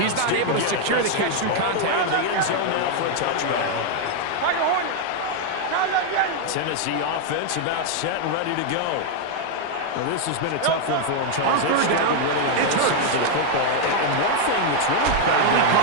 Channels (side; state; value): both; different; correlation 0.00